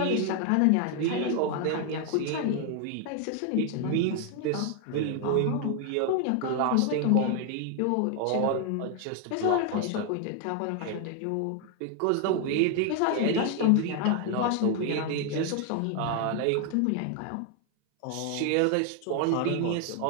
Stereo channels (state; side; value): different; both; correlation 0.00